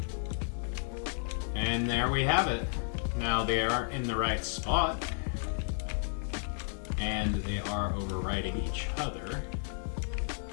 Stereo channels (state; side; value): silent; right; digital silence